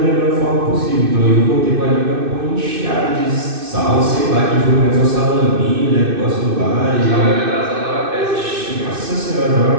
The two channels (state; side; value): late; left; 2.6 ms